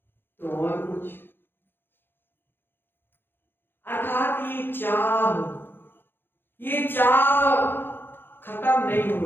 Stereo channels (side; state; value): right; late; 0.10 ms